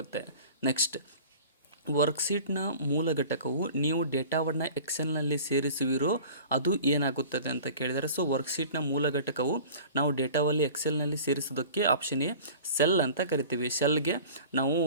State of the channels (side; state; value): both; inverted; correlation -0.42